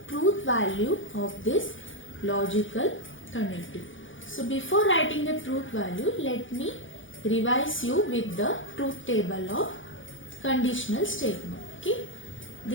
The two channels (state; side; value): late; right; 0.57 ms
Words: truth value of this logical connective. So before writing the truth value, let me revise you with the truth table of conditional statement. Okay.